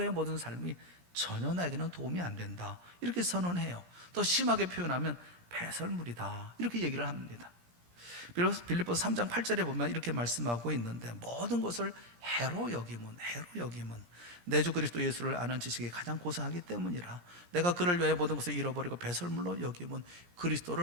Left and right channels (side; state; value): left; late; 17 ms